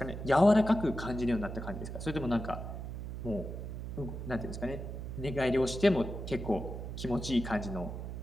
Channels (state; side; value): noise; right; hum, 7 dB below the sound